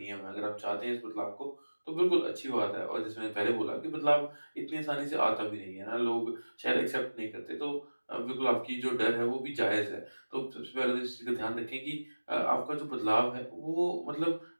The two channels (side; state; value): both; inverted; correlation -1.00